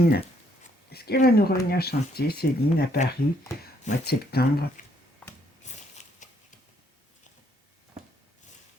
est-ce qu'elle va nous revenir chanter, Céline, à Paris, au mois de septembre?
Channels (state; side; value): normal; both; correlation 0.69